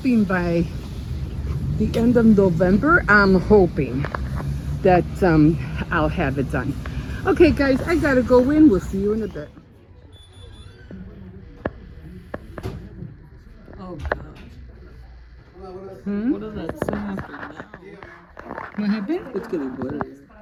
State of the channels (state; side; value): identical; both; correlation 1.00